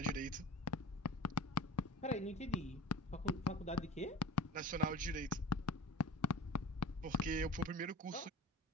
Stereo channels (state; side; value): normal; both; correlation 0.39